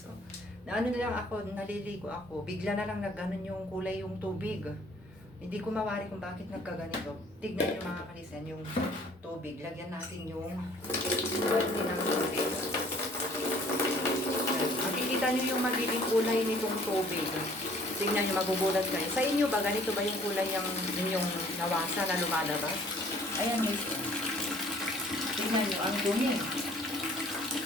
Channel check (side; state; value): both; normal; correlation 0.56